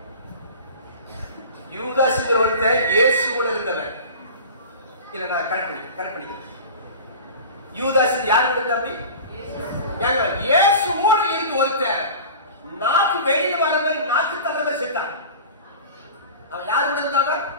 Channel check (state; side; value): inverted; both; correlation -0.36